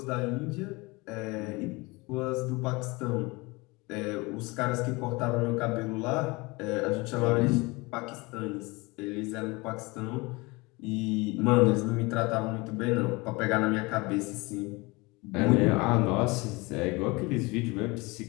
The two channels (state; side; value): quieter; right; 24.7 dB